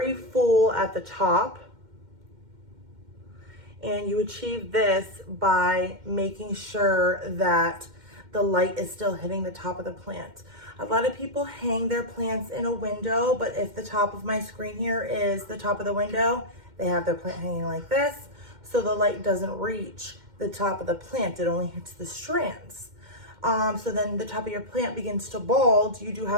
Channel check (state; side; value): late; left; 2.1 ms